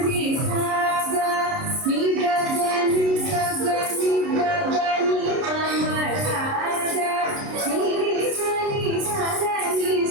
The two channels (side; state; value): left; late; 30 ms